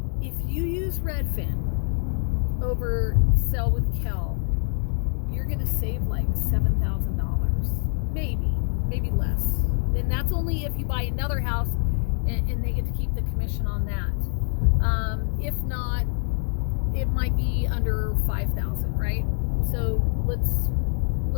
if you use Redfin over Sell with Kel, you're going to save like $7,000, maybe less. And that's only if you buy another house and they get to keep the commission on that. If not, it might be under $5,000, right? So let's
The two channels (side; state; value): right; silent; 60 dB below the other